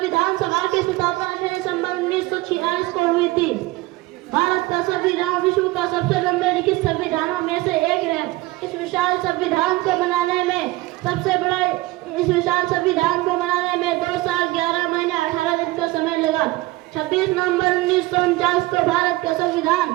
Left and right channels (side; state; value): left; quieter; 20.0 dB